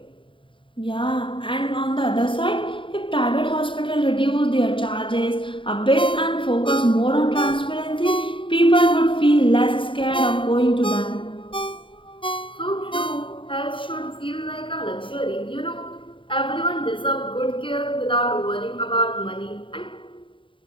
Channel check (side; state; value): right; late; 0.25 ms